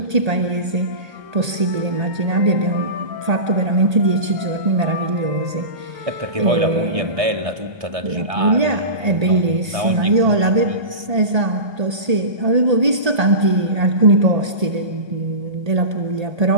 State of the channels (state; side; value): late; left; 1.8 ms